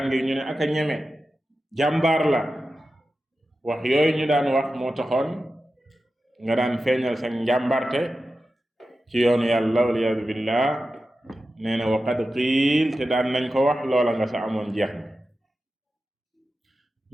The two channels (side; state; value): both; normal; correlation 0.92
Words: ngir ñu ne aka ñeme, jàmbaar la. wax yooyu ñu daan wax moo taxoon nga daan feeñal sa njàmbarte ci yoonu yàlla waliyaadu billah. nee na waqad qiil, te daan nañ ko wax, loola nga sa amoon jeex na.